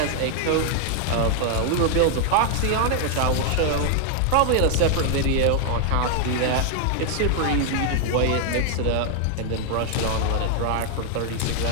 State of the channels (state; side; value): different; both; correlation 0.00